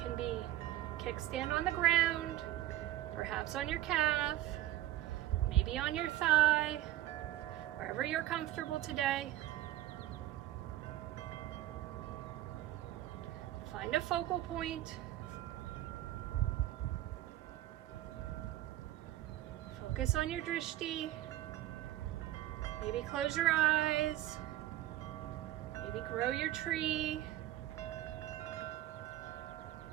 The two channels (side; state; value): left; quieter; 14.3 dB